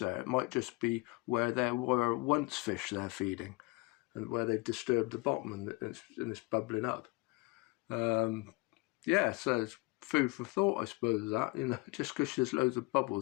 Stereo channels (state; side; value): quieter; right; 24.9 dB